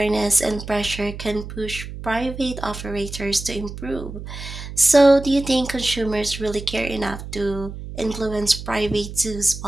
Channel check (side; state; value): right; noise; hum, 10 dB below the sound